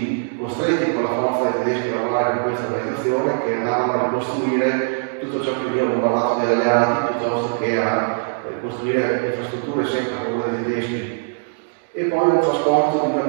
costretti con la forza dei tedeschi a lavorare in questa organizzazione, che andavano a ricostruire tutto ciò che veniva bombardato dagli alleati piuttosto che a costruire infrastrutture sempre a favore dei tedeschi. E poi un trasporto di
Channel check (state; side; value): silent; left; digital silence